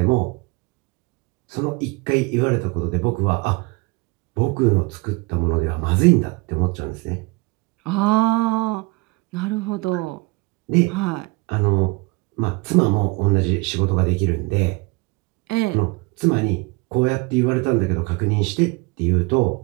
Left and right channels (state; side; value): quieter; left; 25.5 dB